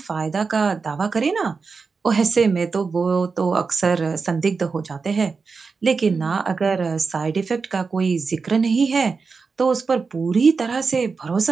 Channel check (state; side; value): quieter; left; 4.8 dB